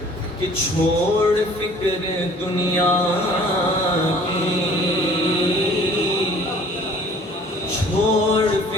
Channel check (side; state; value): both; normal; correlation 0.52